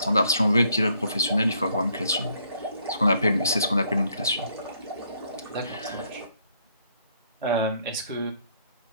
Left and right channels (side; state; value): both; inverted; correlation -0.70